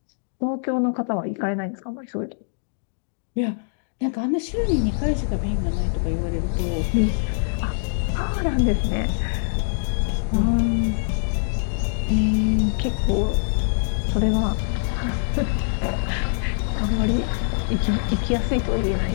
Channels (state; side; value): silent; right; digital silence